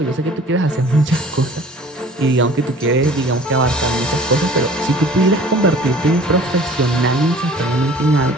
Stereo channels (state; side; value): normal; both; correlation 0.49